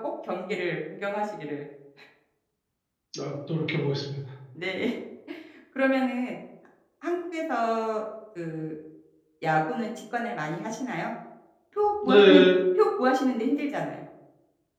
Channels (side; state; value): both; identical; correlation 1.00